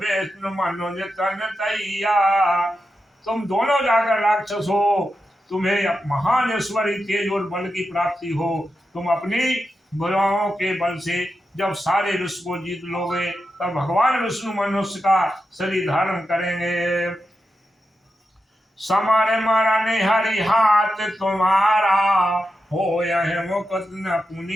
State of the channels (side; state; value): both; normal; correlation 0.88